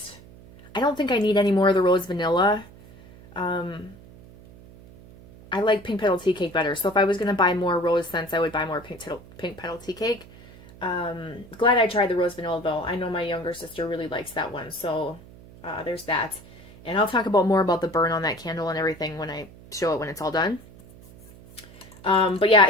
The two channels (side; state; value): right; noise; hum, 21 dB below the sound